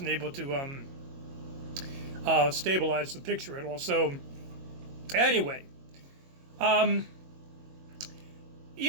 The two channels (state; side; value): late; left; 22 ms